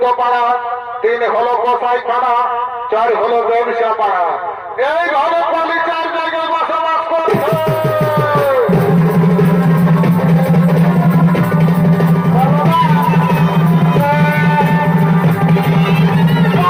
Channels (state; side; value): identical; both; correlation 1.00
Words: 3 হলো কসাইখানা, 4 হলো ব্যবসা পাড়া। এইভাবে কলি 4 জায়গায় বসবাস করছে।